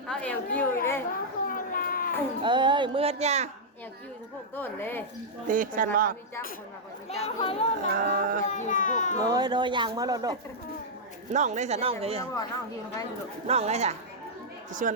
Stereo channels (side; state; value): both; normal; correlation -0.07